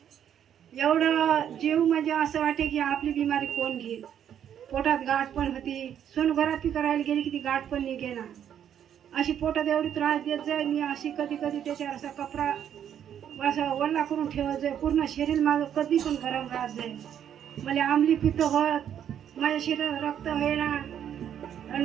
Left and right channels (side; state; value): left; quieter; 9.5 dB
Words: एवढं जीव म्हणजे असं वाटे की आपली बिमारी कोण घेईल. पोटात गाठ पण होती, सोनोग्राफी करायला गेली की ती गाठ पण निघेना. अशी पोटात एवढी त्रास देत जाय मी. अशी कधी कधी त्याच्यावर असा कपडा असं वल्ला करून ठेवत जाय. पूर्ण शरीर माझं कधी पण गरम राहत जाय. मला आंबली पित्त होत, माझ्या शरीरात रक्त होईना. आणि